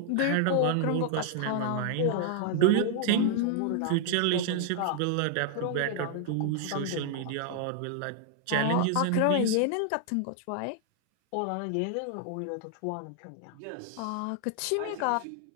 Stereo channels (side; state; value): both; different; correlation 0.00